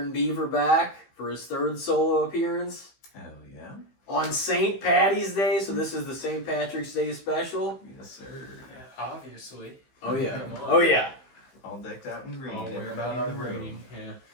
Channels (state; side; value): late; right; 15 ms